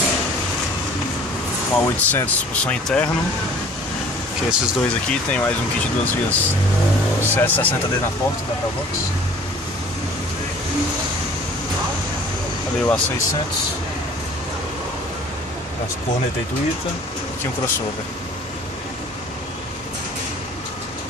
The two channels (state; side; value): normal; both; correlation 0.50